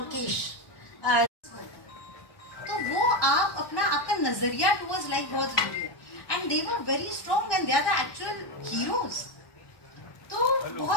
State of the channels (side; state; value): right; late; 1.2 ms